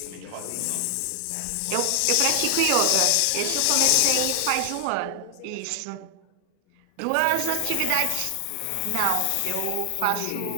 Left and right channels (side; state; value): both; different; correlation 0.00